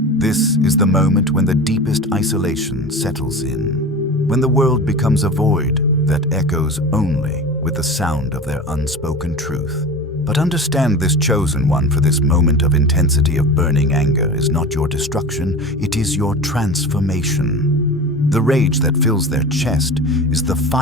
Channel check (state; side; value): normal; both; correlation 0.32